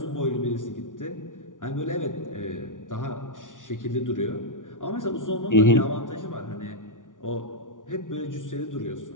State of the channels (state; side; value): late; right; 0.88 ms